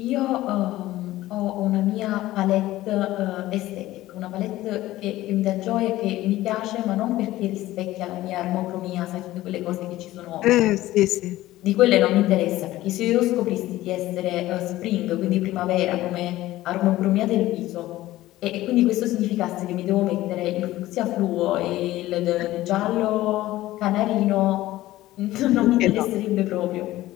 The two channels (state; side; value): quieter; right; 16.1 dB